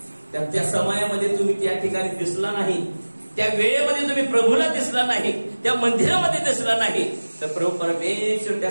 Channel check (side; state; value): both; inverted; correlation -1.00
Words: त्या समयामध्ये तुम्ही त्या ठिकाणी दिसला नाही, त्या वेळेमध्ये तुम्ही प्रभूला दिसला नाही, त्या मंदिरामध्ये दिसला नाही, तर प्रभू परमेश्वर त्या